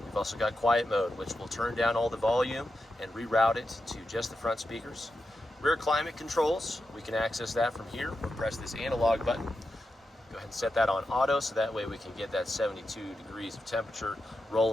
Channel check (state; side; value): normal; both; correlation 0.89